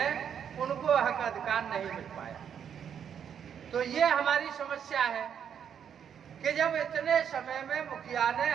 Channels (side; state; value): left; quieter; 8.2 dB